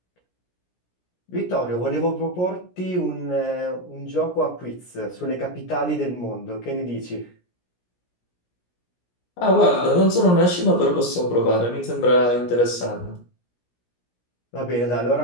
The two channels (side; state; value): right; late; 17 ms